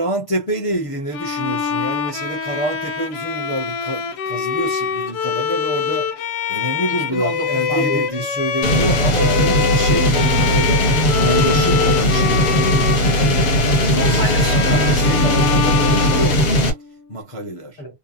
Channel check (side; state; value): right; late; 6.9 ms